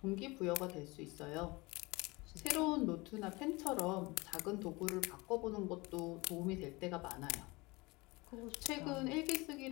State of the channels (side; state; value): right; quieter; 24.0 dB